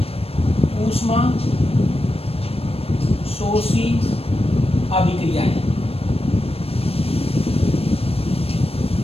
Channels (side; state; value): right; late; 0.28 ms